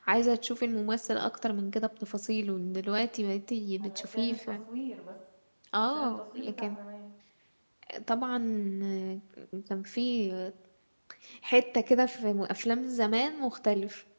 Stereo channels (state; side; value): inverted; both; correlation -1.00